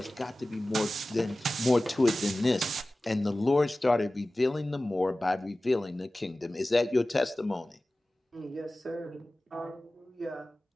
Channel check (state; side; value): normal; both; correlation 0.97